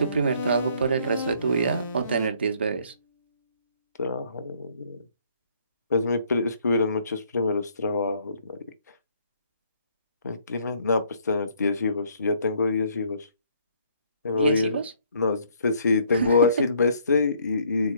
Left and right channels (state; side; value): inverted; both; correlation -0.64